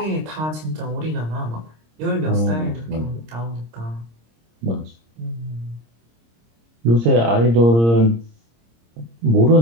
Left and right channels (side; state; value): left; late; 26 ms